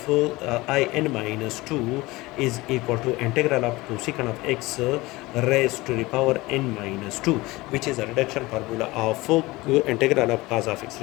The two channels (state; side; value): quieter; right; 20.9 dB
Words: in minus 2 is equal to integral of cosecant of x raised to the power n minus 2, which is a reduction formula of integral of cos of x